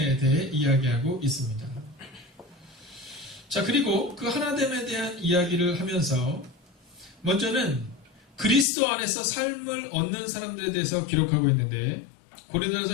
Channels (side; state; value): right; drops out; at 8.7 s